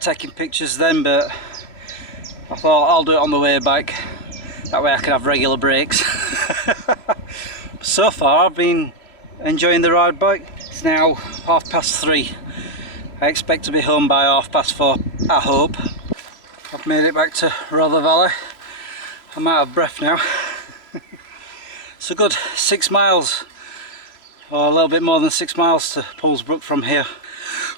taking pictures then, but I thought I'll do it on the way back, that way I can have regular breaks. So far I've been enjoying the ride back. It's now 3:30. I expect to be home by 4:30, I hope. I've made it back to Rother Valley. I'm out of breath now. It's a good 6 miles, or a little bit more than 6 miles to Poolsbrook from here.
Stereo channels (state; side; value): late; right; 3.0 ms